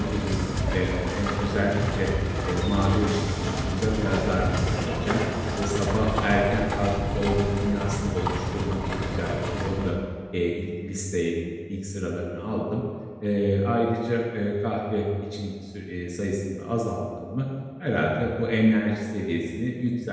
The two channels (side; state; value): both; identical; correlation 1.00